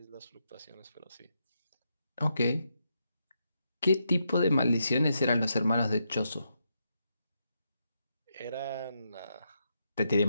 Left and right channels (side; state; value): both; inverted; correlation -0.82